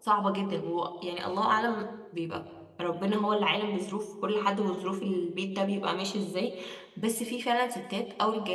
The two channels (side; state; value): both; identical; correlation 1.00